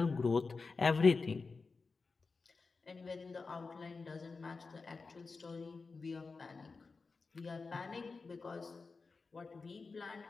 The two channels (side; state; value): right; quieter; 4.3 dB